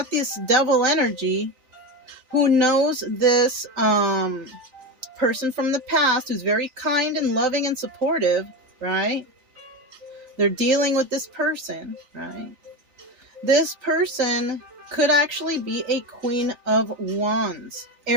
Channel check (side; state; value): left; late; 3.4 ms